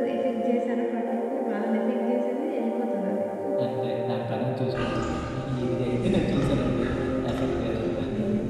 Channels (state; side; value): identical; both; correlation 1.00